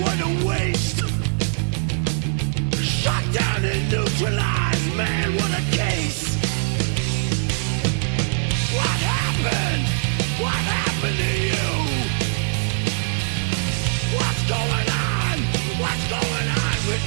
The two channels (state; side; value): silent; left; 64 dB below the other